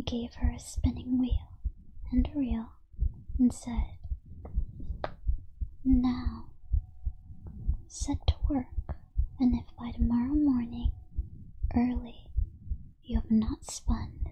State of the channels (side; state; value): both; identical; correlation 1.00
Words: gave her a spinning wheel and a reel, and said, "Now set to work, and if by tomorrow morning early you have not spun